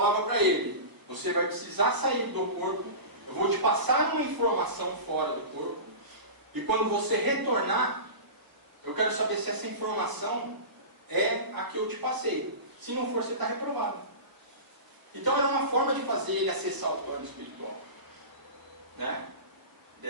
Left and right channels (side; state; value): left; late; 1.0 ms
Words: para ele, você vai precisar sair do corpo, eu vou te passar uma informação fora do corpo, e quando você retornar, eu quero saber se essa informação é a que eu te passei. Se não for, você está reprovado. Então era uma forma de fazer ele acessar o plano espiritual. Né?